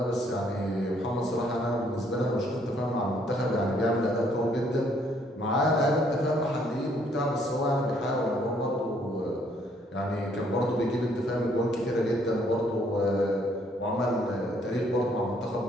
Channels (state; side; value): normal; both; correlation 0.66